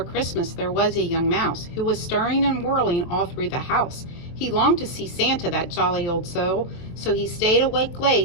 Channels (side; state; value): right; late; 23 ms